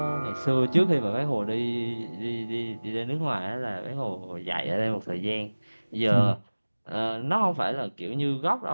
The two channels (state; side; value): inverted; both; correlation -1.00